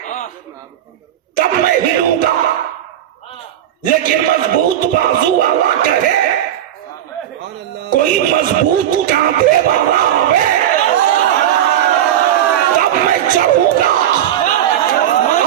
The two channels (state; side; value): quieter; left; 11.3 dB